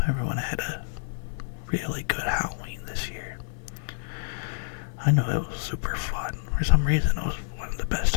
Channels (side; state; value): right; silent; digital silence